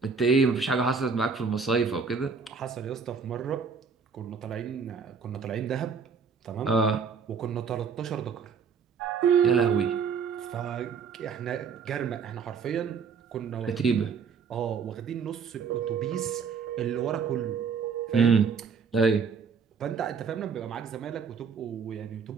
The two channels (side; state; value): left; quieter; 5.8 dB